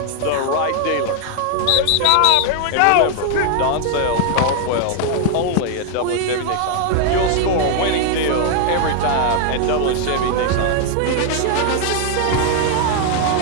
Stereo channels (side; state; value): both; different; correlation 0.00